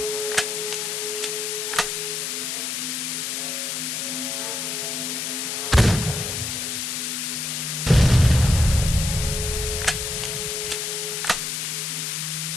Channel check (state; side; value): noise; left; hiss, 2 dB below the sound